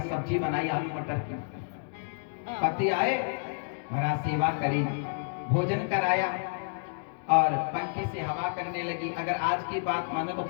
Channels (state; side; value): silent; right; digital silence